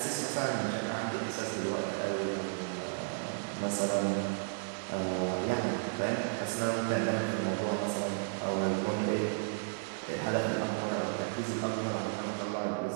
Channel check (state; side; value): silent; left; digital silence